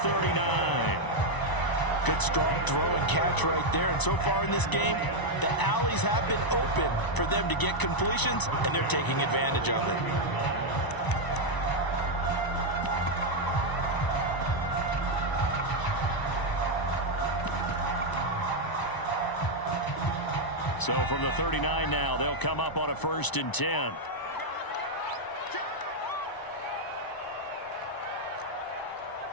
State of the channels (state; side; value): late; right; 1.0 ms